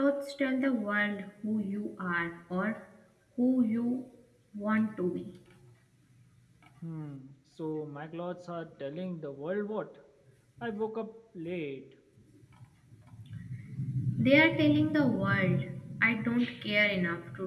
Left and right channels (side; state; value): both; identical; correlation 1.00